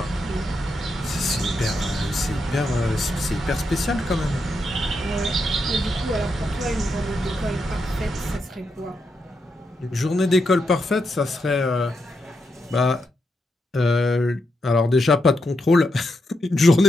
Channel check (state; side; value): normal; both; correlation 0.83